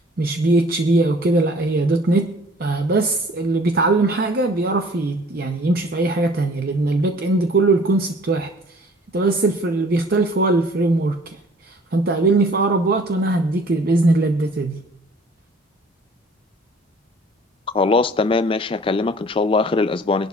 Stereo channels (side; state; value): both; normal; correlation 0.52